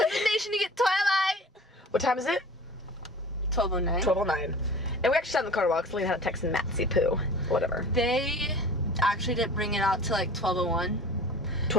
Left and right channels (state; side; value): normal; both; correlation 0.41